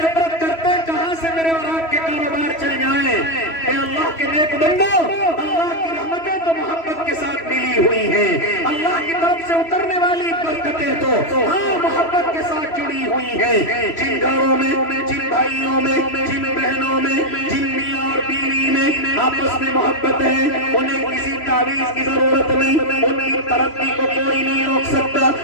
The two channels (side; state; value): right; late; 3.1 ms